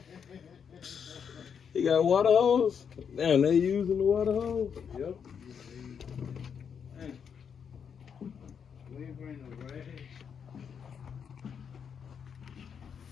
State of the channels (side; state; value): right; quieter; 7.2 dB